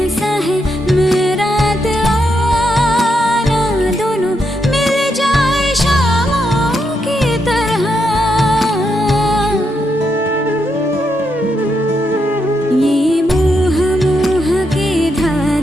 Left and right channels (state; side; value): normal; both; correlation 0.81